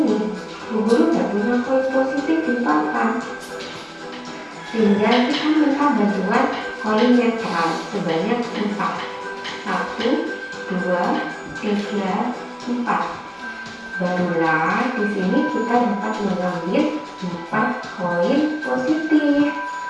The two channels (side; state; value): both; identical; correlation 1.00